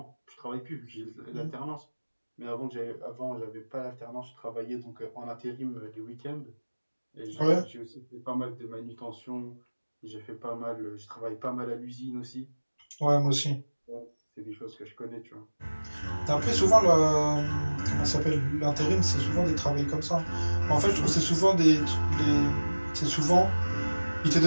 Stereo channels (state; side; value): inverted; both; correlation -1.00